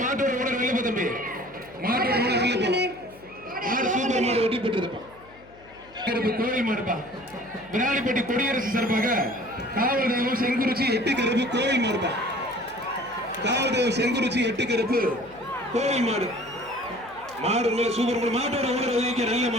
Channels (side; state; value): left; noise; hum, 25 dB below the sound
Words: ஓட நல்ல தம்பி. மாட்டோட ஓட நல்ல போ. மாடு சூப்பர் மாடு வெட்டி பெற்றதுப்பா. கருப்பு கோயில் மாடுப்பா. விராலிப்பட்டி கொடியரசு சார்பாக காவல் தெய்வம் செங்குறிச்சி 8 கருப்பு கோயில் மாடுப்பா. காவல் தெய்வம் செங்குறிச்சி 8 கருப்பு கோயில் மாடு. மாடு நல்ல சூப்பர் மாடு. மாட்டோட ஓட ஒதுக்கிய நல்ல